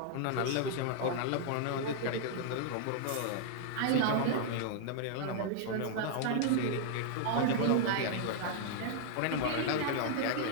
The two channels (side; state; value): both; different; correlation -0.01